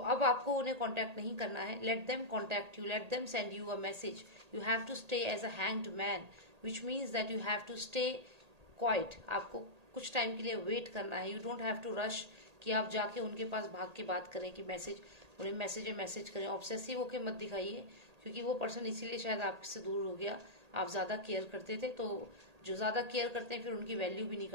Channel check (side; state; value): left; late; 1.8 ms